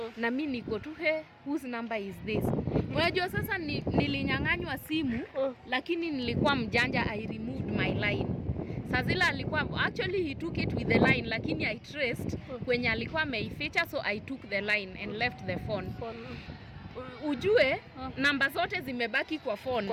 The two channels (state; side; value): identical; both; correlation 1.00